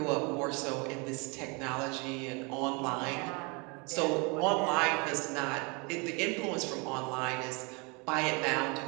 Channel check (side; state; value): left; quieter; 30.5 dB